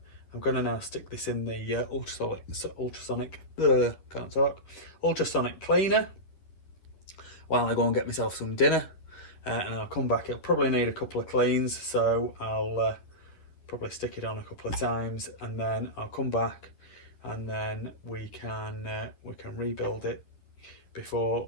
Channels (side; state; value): right; late; 11 ms